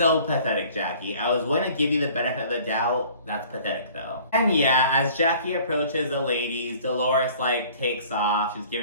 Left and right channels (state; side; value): inverted; both; correlation -0.51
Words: pathetic, Jackie. I was going to give you the benefit of the doubt. That's pathetic, though. And yeah, as Jackie approaches the ladies, Dolores, like, takes off. She's